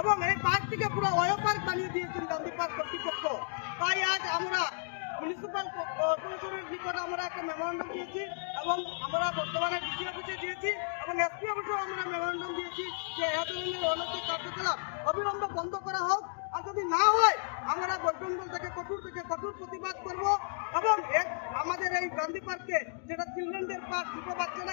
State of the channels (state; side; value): silent; right; digital silence